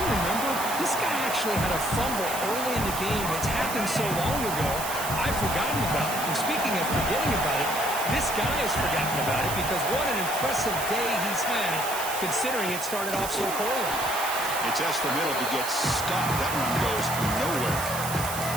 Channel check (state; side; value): noise; right; hiss, 6 dB below the sound